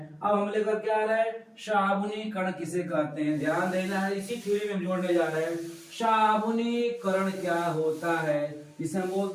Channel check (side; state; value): both; identical; correlation 1.00